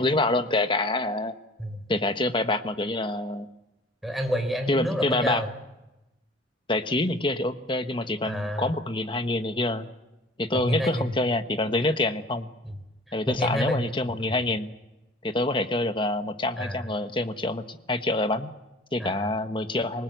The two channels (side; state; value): both; normal; correlation 0.45